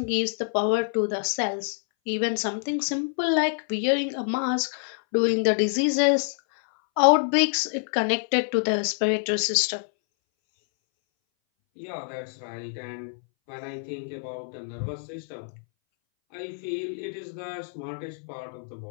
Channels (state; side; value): silent; right; 61 dB below the other